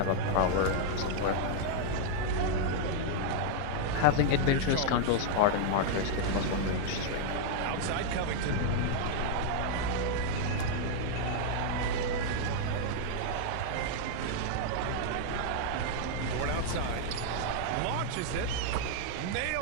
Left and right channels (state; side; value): different; both; correlation -0.01